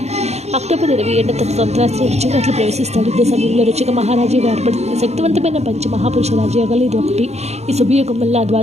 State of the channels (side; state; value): left; late; 0.31 ms